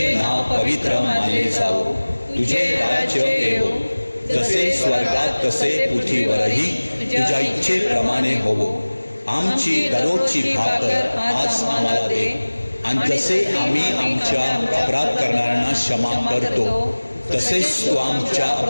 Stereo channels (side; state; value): both; inverted; correlation -1.00